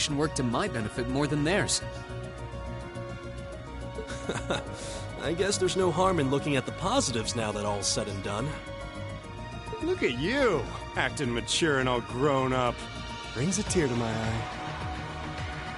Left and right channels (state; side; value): identical; both; correlation 1.00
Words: worked to my benefit more than theirs. I guess there's no harm in looking at the positives now that all's said and done. Look at you, acting mature and all grown up. Brings a tear to my eye.